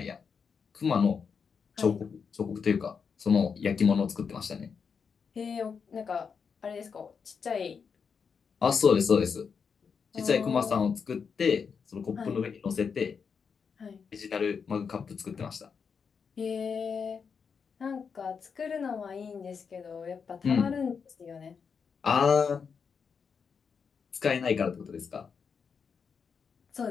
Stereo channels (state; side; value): quieter; right; 6.1 dB